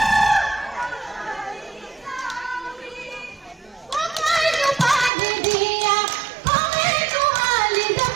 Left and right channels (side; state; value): left; drops out; at 5.1 s